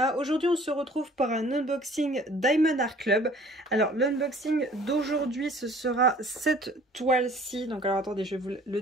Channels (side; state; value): both; normal; correlation 0.52